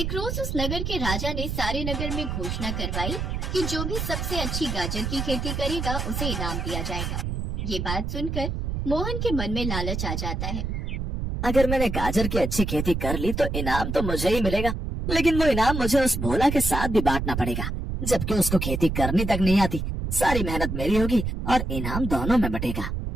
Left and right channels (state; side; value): noise; right; rumble, 3 dB below the sound